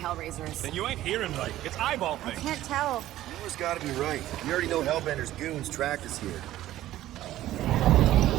Then you ain't hearing right. It's eyeball I things. can't tell. You always gotta be right. You already know Hellbender's goons tracked us here.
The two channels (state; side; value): quieter; left; 14.2 dB